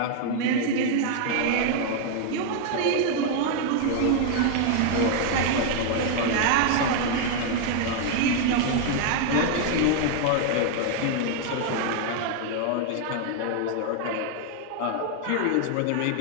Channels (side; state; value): both; different; correlation 0.00